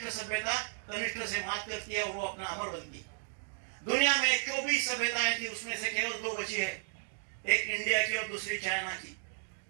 सभ्यता कनिष्ठ से मात करती है और वो अपना अमर बनती। दुनिया में 24 सभ्यताएं थी, उसमें से केवल 2 बची है, एक इंडिया की और दूसरी चाइना की।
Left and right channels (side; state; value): left; silent; digital silence